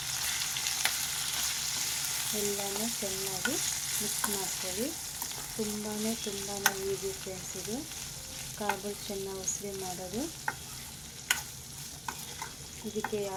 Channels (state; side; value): identical; both; correlation 1.00